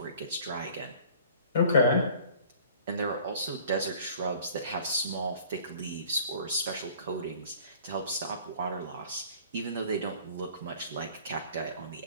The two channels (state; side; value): inverted; both; correlation -0.50